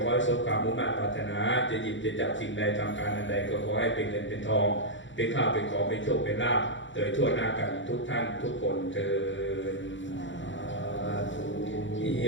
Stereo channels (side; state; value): right; late; 0.55 ms